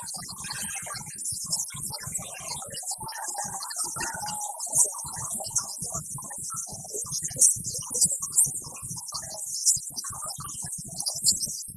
that's short. Referee Alava calls the carry there, but unfortunately we haven't got a whistle on him, just the headset. Pass up the back, Raber. Does she do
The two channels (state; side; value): identical; both; correlation 1.00